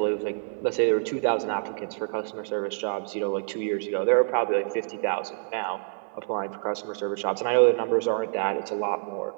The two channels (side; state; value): left; silent; 59 dB below the other